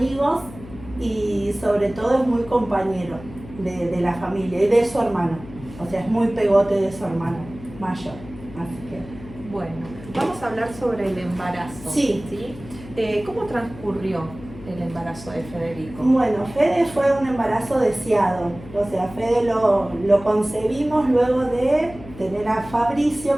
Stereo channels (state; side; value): noise; left; hum, 16 dB below the sound